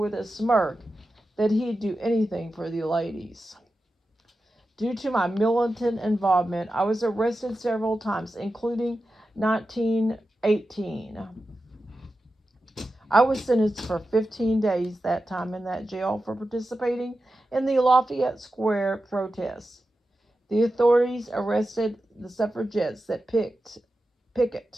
a smirk that he'd do anything for the ladies. Due to my militant involvement, I was arrested several times, including 1918. I was sentenced for 15 days that time in that jail for participating in the Lafayette Square protests. The authorities arrested the suffragettes that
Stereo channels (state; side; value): normal; both; correlation 0.92